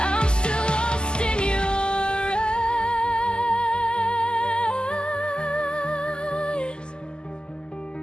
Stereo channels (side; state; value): right; late; 0.047 ms